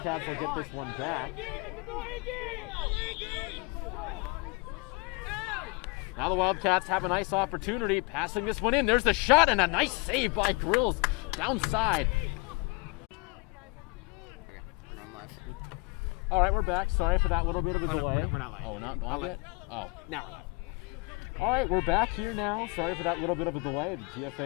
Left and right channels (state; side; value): quieter; right; 28.5 dB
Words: will get this one back. Now the Wildcats have a nice opportunity, passing this one in. There's the shot, and a nice save by Grills downside. All right, we're back. Sorry for that little bit of a delay. No, we're not live. Oh, we're not live yet? Oh. Now we're live. All right, we're back here now. Sorry for that little bit of a delay. The